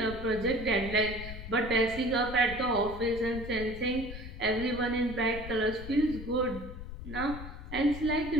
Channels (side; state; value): left; noise; rumble, 10 dB below the sound